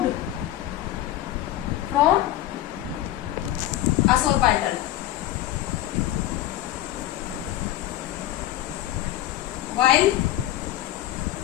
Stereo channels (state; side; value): quieter; right; 14.0 dB